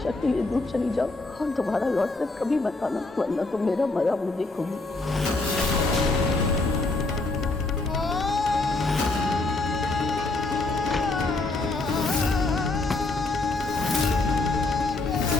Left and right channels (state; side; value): quieter; right; 3.2 dB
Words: के लिए दूर चली जाओ और दोबारा लौट कर कभी मत आना, वरना तो मेरा मरा मुझे देखोगी।